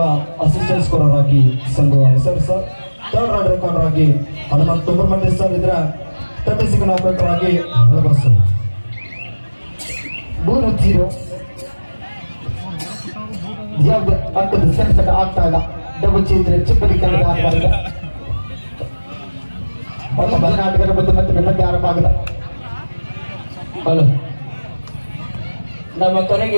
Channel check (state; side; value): inverted; both; correlation -1.00